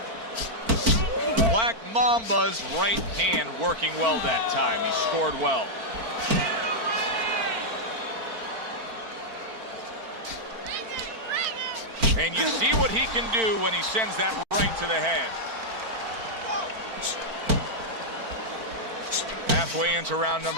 Black Black Mamba's right hand working well that time. He scored well. And you see what he can do when he sends that right to the head. Halfway into round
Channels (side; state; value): left; late; 4.4 ms